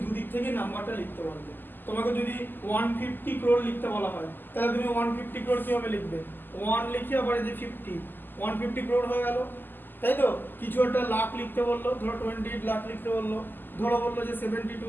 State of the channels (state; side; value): late; right; 0.092 ms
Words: দুদিক থেকে নাম্বারটা লিখতে পারবে। তোমাকে যদি 150 crore লিখতে বলা হয় তাহলে তুমি 150 crore কিভাবে লিখবে, 1 লিখে আবার এই যে 50, 150 crore হয়ে গেল, তাই তো? কিছু একটা লাখ লিখতে বললো, ধরো 28 লাখ লিখতে বললো, ধরো বললো যে